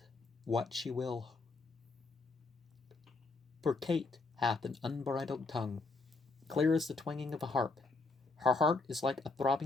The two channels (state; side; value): quieter; right; 3.8 dB